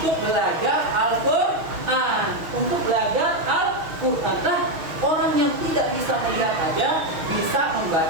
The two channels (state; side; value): late; left; 6.1 ms